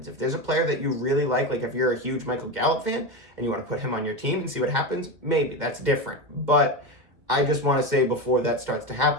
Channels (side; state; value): left; late; 2.1 ms